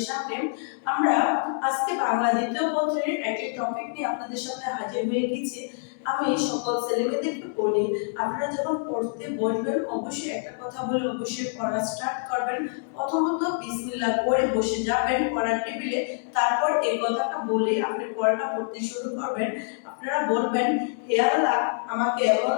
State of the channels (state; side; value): silent; right; 61 dB below the other